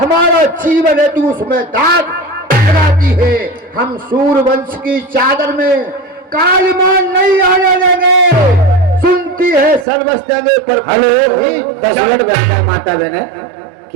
जीवन है तू उसमें दाग लगाती है। हम सूर्यवंश की चादर में कालिमान नहीं आने देंगे। सुनती है सर्वस्व जगह पर। हेलो, 10 मिनट बचा माता बहन,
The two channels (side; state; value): left; drops out; at 9.9 s